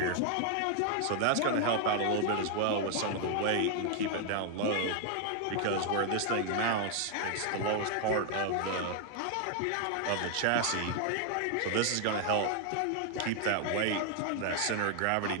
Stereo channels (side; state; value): both; different; correlation 0.00